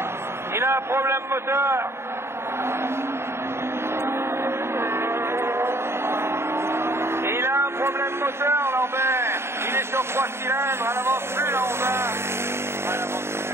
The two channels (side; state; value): left; late; 0.12 ms